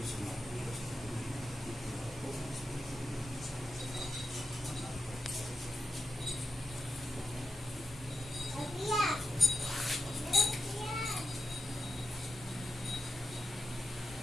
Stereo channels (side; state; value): both; normal; correlation 0.88